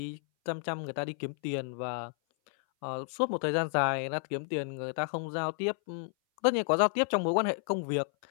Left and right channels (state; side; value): silent; right; 57 dB below the other